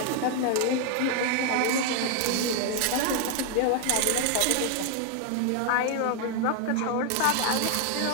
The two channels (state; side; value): different; both; correlation 0.01